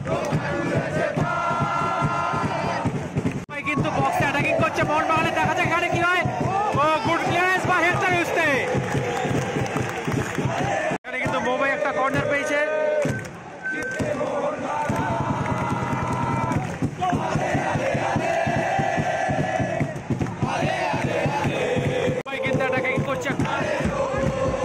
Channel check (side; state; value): both; identical; correlation 1.00